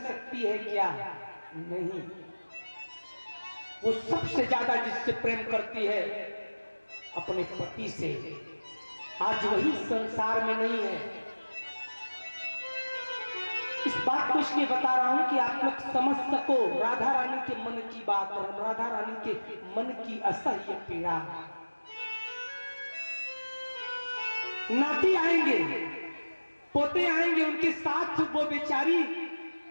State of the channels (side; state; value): both; inverted; correlation -1.00